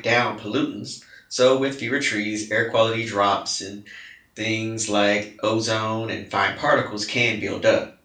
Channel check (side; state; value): both; identical; correlation 1.00